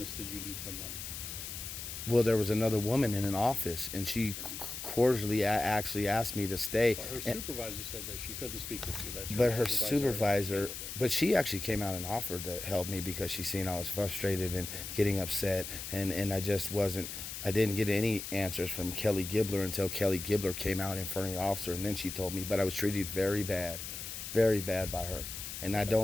did you need from them? Well, there was another woman in an office, and she cordially actually asked me to stay. But her supervisor said that she couldn't speak with you. But her supervisor, but she actually came out and offered to help me because she seen I was frustrated and getting upset, and I just wasn't. I didn't get any answers from Kelly Gibbler until Kelly Gibbler came out in front of the officer, and then she told me. But I was treated very bad by her. And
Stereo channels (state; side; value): noise; left; hiss, 8 dB below the sound